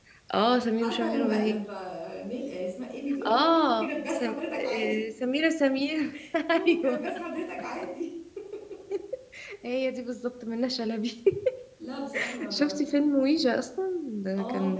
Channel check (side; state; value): both; identical; correlation 1.00